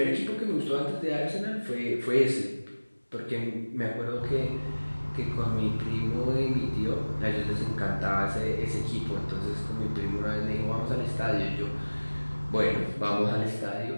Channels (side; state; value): both; inverted; correlation -1.00